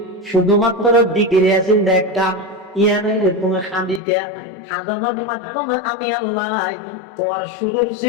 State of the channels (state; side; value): drops out; right; at 4.0 s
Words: শুধুমাত্র ডিগ্রি আছে একটা ইয়ানে তুমি খান্দিতে খাদানোর মাধ্যমে আমি আল্লাহ তোমার শুরুর